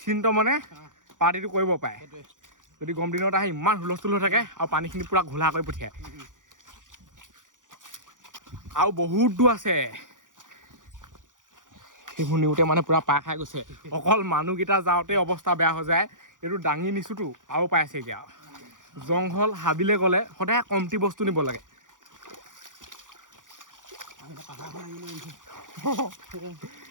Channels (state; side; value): late; left; 0.88 ms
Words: মানে পাৰ্টিটো কৰিব পাৰে যদি গৰম দিনত আহে ইমান হুলস্থুল হৈ থাকে আৰু পানীখিনি পুৰা ঘোলা কৰি পঠিয়ায় আৰু বহুত দূৰ আছে সেইবোৰ নিওঁতে মানে পুৰা পাৰ খাই গৈছে অকল মানুহকেইটা যাওঁতে অৱস্থা বেয়া হৈ যায় এইটো দাঙি নিছোঁতো আৰু পাই আছে এতিয়া জংঘল হাবিলে গ'লে সদায় কমটি বস্তু নিব লাগে